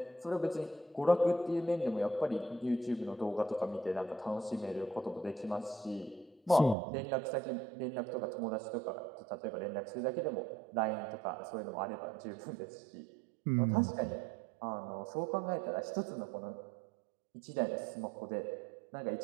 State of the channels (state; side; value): drops out; left; at 6.8 s